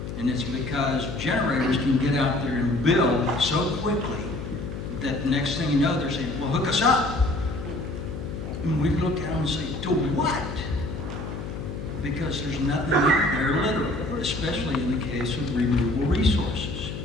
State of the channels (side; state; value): left; noise; hum, 7 dB below the sound